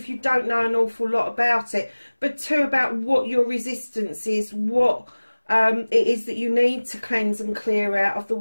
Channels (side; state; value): both; inverted; correlation -1.00